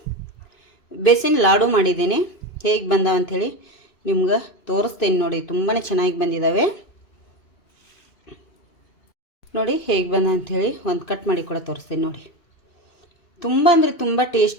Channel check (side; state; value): right; late; 2.5 ms